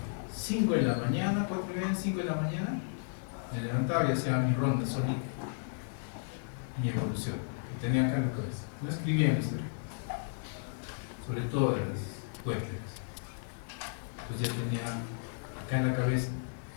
5 de la mañana, 4:30, 5 de la mañana, me levantaba y hacía mi ronda solita, mi evolución, que tenía acá en la cabeza. No escribía en la historia, sobre todo de las cuentas. Entonces ya tenía acá en la cabeza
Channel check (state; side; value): silent; right; digital silence